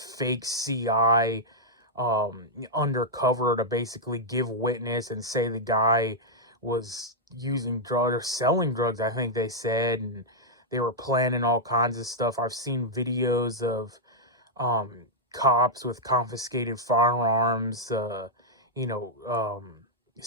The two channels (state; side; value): normal; both; correlation -0.05